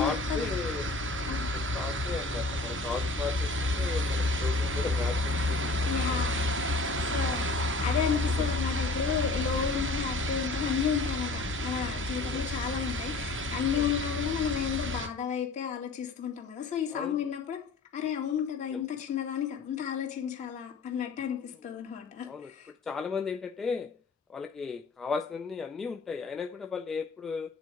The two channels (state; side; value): quieter; right; 3.5 dB